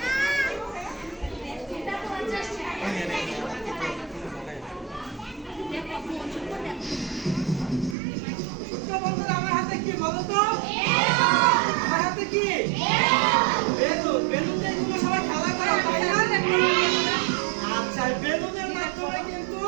বন্ধুরা আমার হাতে কি বলো তো? আমার হাতে কি? বেলুন। বেলুন দিয়ে তোমরা সবাই খেলা করো, তাই না? আচ্ছা, বেলুনের মাধ্যমে কিন্তু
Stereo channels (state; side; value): drops out; left; at 8.0 s